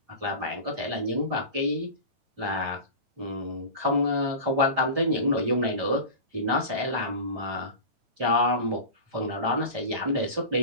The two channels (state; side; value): late; left; 9.0 ms